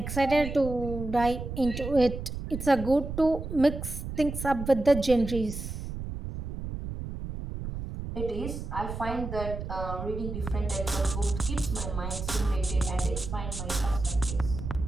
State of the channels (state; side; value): noise; right; rumble, 7 dB below the sound